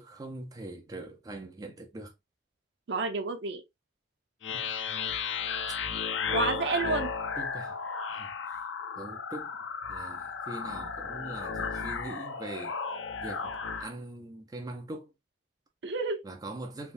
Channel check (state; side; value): normal; both; correlation 0.02